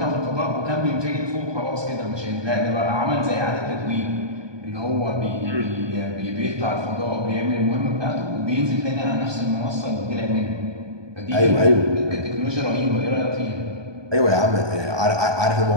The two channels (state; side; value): late; left; 1.2 ms